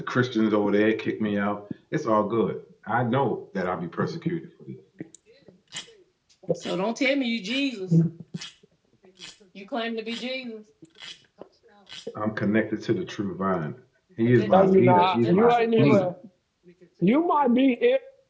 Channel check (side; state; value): both; identical; correlation 1.00